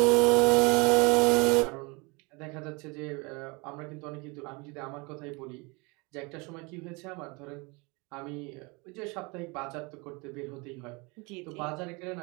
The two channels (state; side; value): quieter; left; 28.0 dB